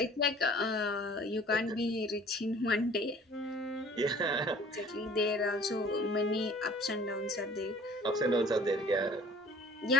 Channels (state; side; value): normal; both; correlation 0.51